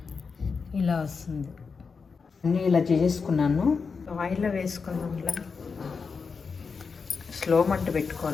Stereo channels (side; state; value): right; quieter; 5.2 dB